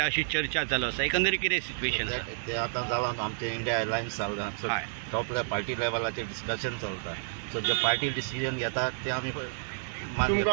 अशी चर्चा चालू आसा, एकंदरीत कितें सिच्युएशन आसा? ते आतां जालां आमचे इंडिया एअरलायन्स जालां, सो टॉप पार्टी लेवलाचेर डिस्कशन चलता, सो जे पार्टी डिसिजन घेता ते आमी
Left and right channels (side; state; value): left; silent; digital silence